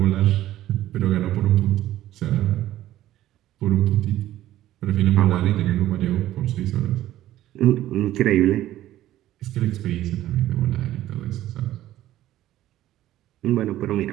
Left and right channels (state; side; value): quieter; left; 13.9 dB